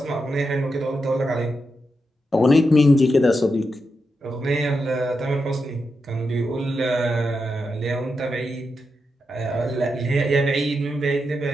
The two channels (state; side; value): normal; both; correlation 0.86